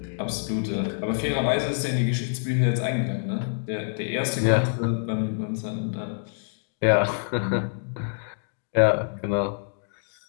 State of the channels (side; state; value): right; silent; digital silence